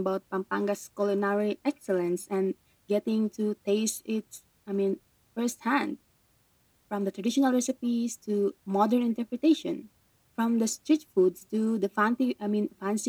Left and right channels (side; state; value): both; identical; correlation 1.00